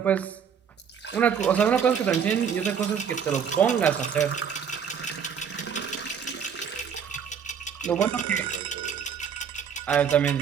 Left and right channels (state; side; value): quieter; left; 7.4 dB